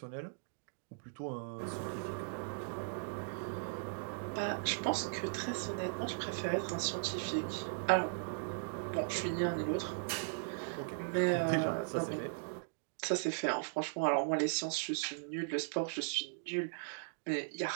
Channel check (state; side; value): silent; left; digital silence